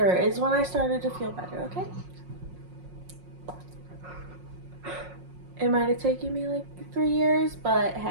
is when I started to feel better, okay? It might have taken me like 3 years, but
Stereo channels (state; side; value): late; left; 5.5 ms